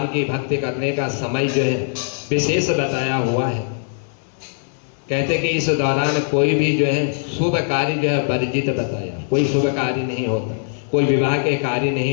की भक्ति करने का समय जो है विशेष बताया हुआ है। कहते कि इस दौरान कोई भी जो है शुभ कार्य जो है वर्जित बताया, कोई शुभ कार्य नहीं होता, कोई विवाह के कार्य नहीं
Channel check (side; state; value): right; silent; digital silence